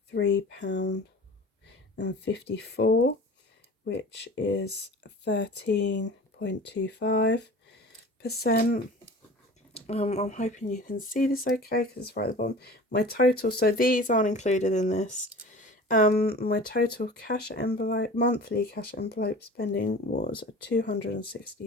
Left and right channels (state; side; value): normal; both; correlation 0.40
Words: which is 13.25%. I'm hoping you can see this okay, because it's right at the bottom. My total, so these aren't included in this. My total cash envelope, monthly cash envelope spending was